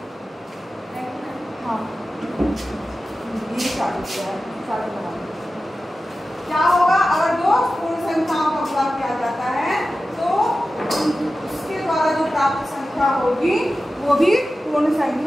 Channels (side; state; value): both; normal; correlation 0.94